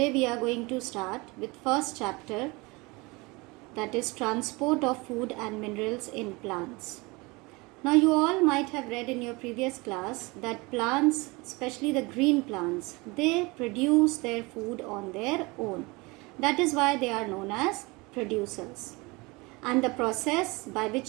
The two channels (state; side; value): quieter; left; 25.2 dB